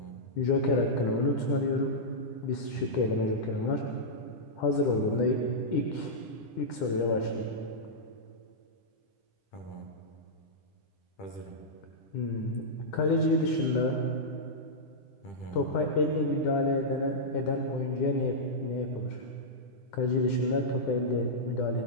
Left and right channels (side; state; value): right; late; 10 ms